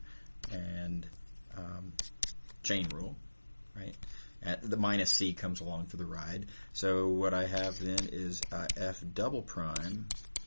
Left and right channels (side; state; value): both; inverted; correlation -1.00